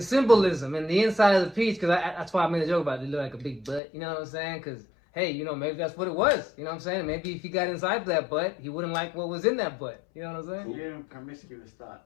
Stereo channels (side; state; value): right; drops out; at 3.8 s